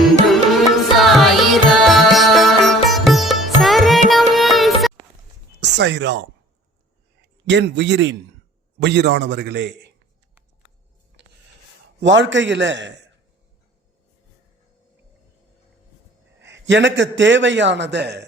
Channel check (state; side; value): normal; both; correlation 0.51